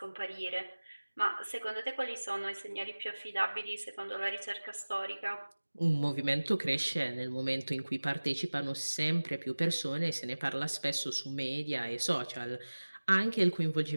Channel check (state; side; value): inverted; both; correlation -1.00